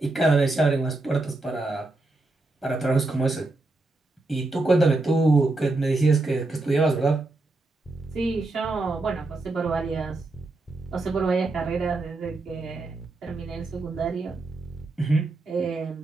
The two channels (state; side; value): quieter; left; 3.1 dB